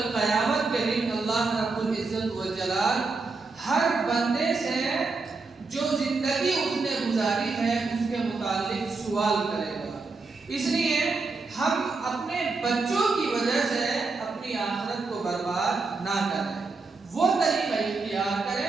قیامت کے دن اللہ رب العزت والجلال ہر بندے سے جو زندگی اس نے گزاری ہے اس کے متعلق سوال کرے گا. اس لیے ہم اپنے بچوں کی وجہ سے اپنی آخرت کو برباد نہ کریں، وہ طریقہ اختیار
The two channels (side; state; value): left; quieter; 4.0 dB